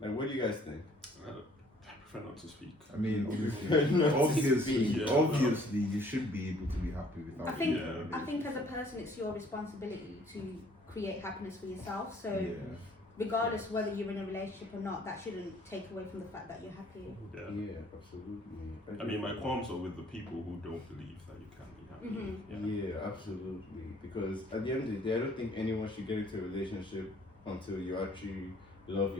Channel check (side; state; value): both; normal; correlation 0.58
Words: what do you guys think? I prefer not to speak. I mean, obviously, Yeah. obviously, you should be able to be happy without. I think as a person, it's your responsibility to create happiness for yourself. So regardless whether you're in a relationship or not, that shouldn't take away from the fact that you're happy. Yeah, absolutely. I mean, my qualms are with the people who don't believe that you can be happy. Yeah, absolutely. Because at the end of the day, I don't think anyone should get into a relationship until you actually love